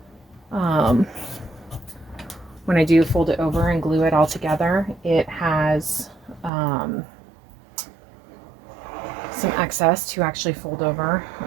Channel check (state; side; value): drops out; left; at 6.5 s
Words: when I do fold it over and glue it all together, it has some excess to actually fold over.